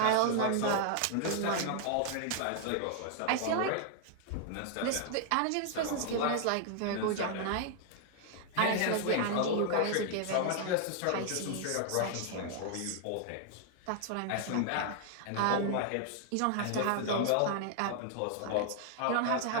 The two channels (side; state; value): both; different; correlation 0.00